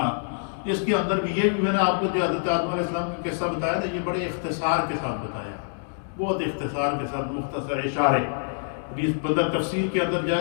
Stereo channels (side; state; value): right; silent; digital silence